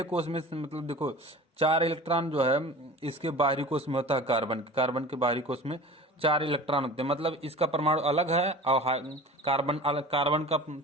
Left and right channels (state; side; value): normal; both; correlation 0.38